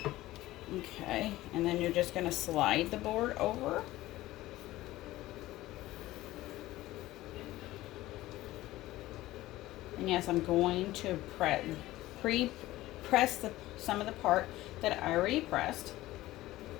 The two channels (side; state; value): right; quieter; 16.7 dB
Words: Okay, and then you're just going to slide the board over. And yes, I'm going to pre-press some of the part that I already pressed.